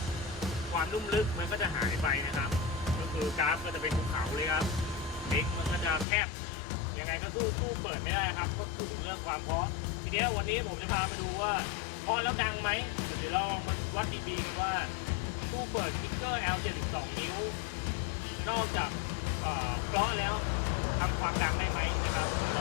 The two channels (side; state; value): right; drops out; at 6.1 s